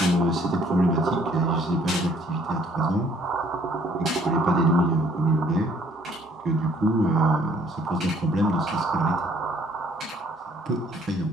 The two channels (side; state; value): both; normal; correlation 0.61